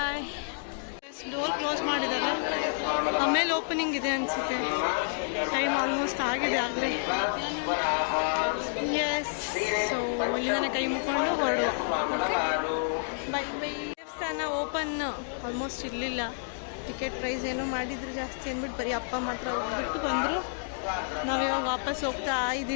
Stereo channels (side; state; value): right; silent; digital silence